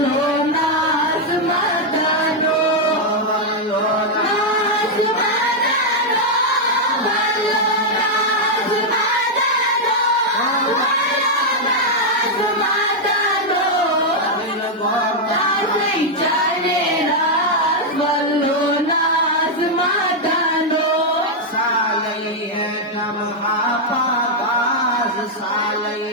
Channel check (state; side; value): normal; both; correlation -0.02